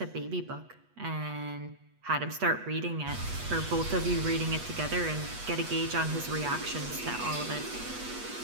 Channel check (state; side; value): late; left; 8.2 ms